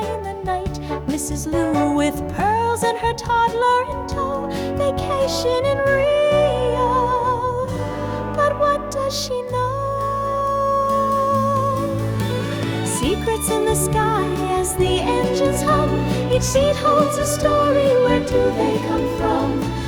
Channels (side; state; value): both; identical; correlation 1.00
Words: in the night. Mrs. Lou with pearls and her toddler in tow, vacation in Rio. But what does she know? Secrets in the sky as the engines hum. Each seat holds a story, where do they come from?